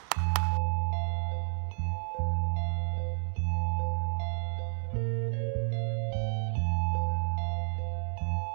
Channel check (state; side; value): silent; left; digital silence